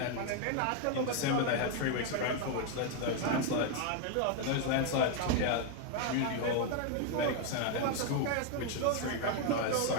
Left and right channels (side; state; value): both; different; correlation 0.00